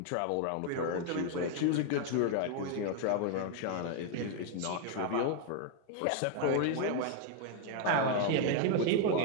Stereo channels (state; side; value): different; both; correlation 0.00